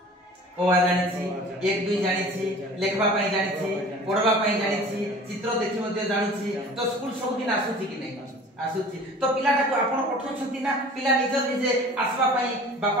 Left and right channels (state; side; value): normal; both; correlation 0.44